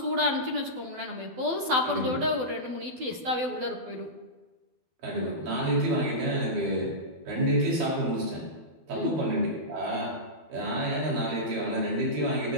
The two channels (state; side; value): late; left; 12 ms